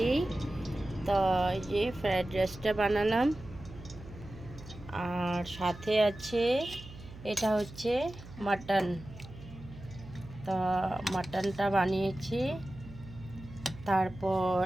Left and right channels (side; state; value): right; noise; hum, 16 dB below the sound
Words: তো এই যে ফ্রায়েড রাইসটা বানালাম, আর সাথে আছে এটা হচ্ছে মাটন। তো মাটনটা বানিয়েছি। তারপর